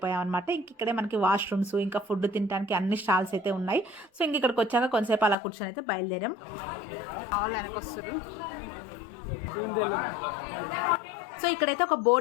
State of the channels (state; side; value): drops out; right; at 5.4 s